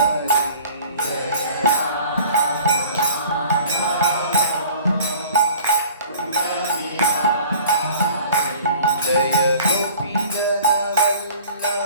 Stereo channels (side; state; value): both; inverted; correlation -0.46